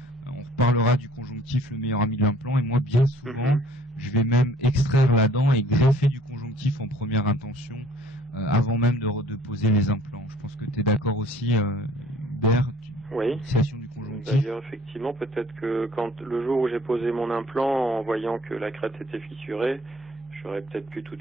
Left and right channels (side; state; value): both; normal; correlation 0.55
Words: On reparlera du conjonctif, le meilleur ami de l'implant, et moi, bien souvent, je vais même extraire la dent et greffer du conjonctif en première intention, avant même de poser les implants. Je pense que tu es d'accord aussi, Hubert, Oui. fixation du conjonctif. D'ailleurs, effectivement, peut-être que quand le jour où j'ai posé mon implant, en voyant que la crête était fissurée, j'aurais peut-être pu tout